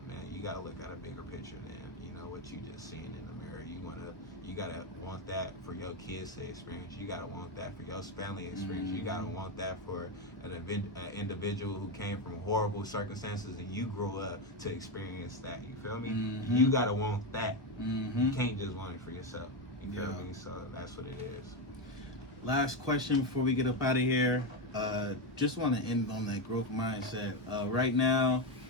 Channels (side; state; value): both; normal; correlation 0.10